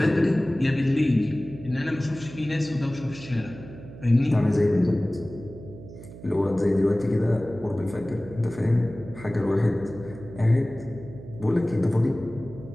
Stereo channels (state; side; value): noise; right; hum, 15 dB below the sound